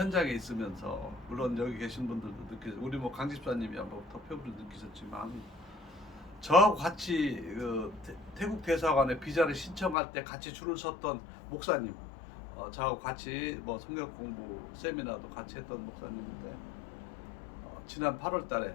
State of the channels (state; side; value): drops out; right; at 10.0 s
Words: 있으면서 물론 여기 계신 분들도 우리 뭐 강 집사님이야 뭐 더 표부를 느끼셨지만 저하고 같이 태국 대사관에 비자를 신청할 때 같이 줄을 섰던 목사님, 저하고 같이 뭐 성경 공부 세미나도 같이 했던 목사님인데 지난 8월달에